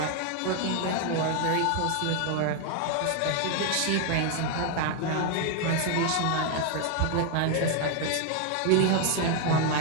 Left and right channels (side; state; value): both; different; correlation 0.01